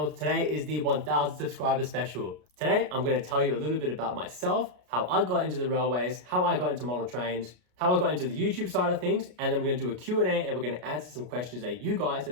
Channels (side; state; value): left; late; 33 ms